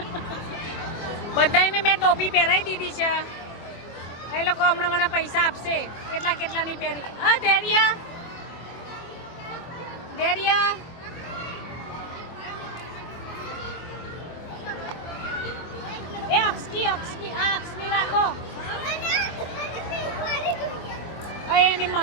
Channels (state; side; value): late; right; 24 ms